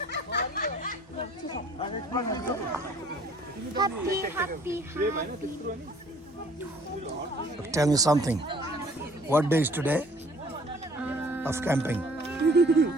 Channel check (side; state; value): both; normal; correlation 0.56